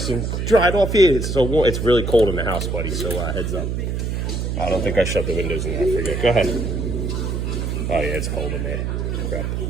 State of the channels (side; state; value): right; noise; hum, 2 dB below the sound